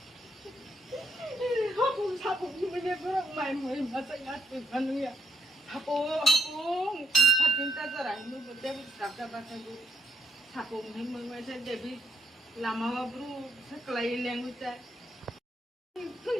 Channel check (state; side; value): normal; both; correlation 0.77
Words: Hapung hapung ini berang main main masa ngatur anu ya. Hapung patinta cerai nu betul kakak bahasa guru. Hapung ini mengasa Dewi lama bro sekelai yang ucap.